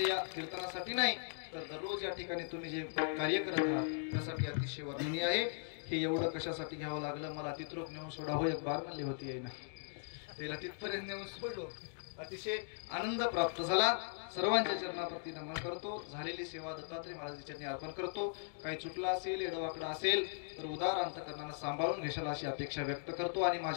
या कीर्तनासाठी नाही तर दररोज या ठिकाणी तुम्ही जे कार्य करत आहात त्यासाठी अतिशय वर्णनीय आहे हे एवढं कशासाठी घ्यावं लागलं मला तिथरोक नेऊन सोडावं एक बार म्हणली होती आहे ना त्याला तिथपर्यंत नेऊन सोडलो अतिशय आनंद प्राप्त झाला. सर्वांच्या चरणाप्रती नमन करतो. झालेली सेवा दत्तात्रय महाराजांच्या चरणी अर्पण करतो. काही चुकला असेल, एडवाकडा असेल तर उदार अंतकरणानं सांभाळून घेशाल अशी अपेक्षा व्यक्त करतो आणि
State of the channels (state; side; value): silent; right; digital silence